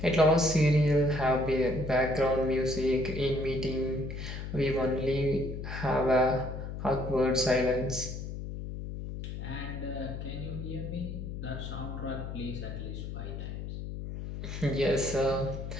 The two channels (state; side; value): noise; left; hum, 7 dB below the sound